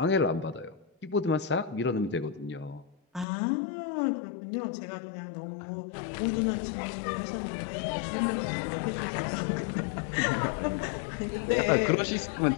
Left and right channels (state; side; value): drops out; right; at 3.2 s